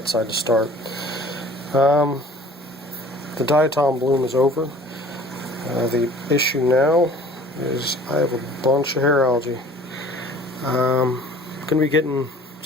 side to start. The diatom bloom is over. The issue now is I have a bunch of hair algae. I'm going to be getting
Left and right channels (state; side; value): normal; both; correlation 0.49